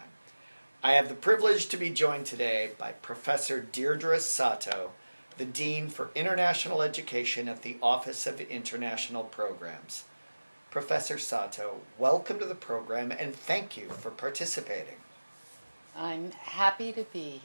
I have the privilege to be joined today by Professor Deirdre Sato, the Dean for International Education at the Office of International Programs. Professor Sato, welcome to the program and thank you for participating. I'm happy to be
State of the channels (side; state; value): both; inverted; correlation -1.00